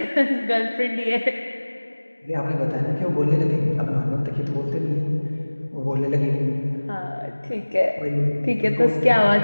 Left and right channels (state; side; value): inverted; both; correlation -1.00